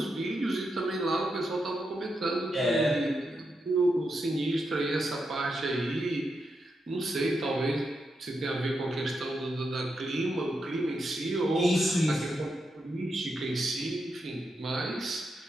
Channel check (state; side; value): normal; both; correlation 0.84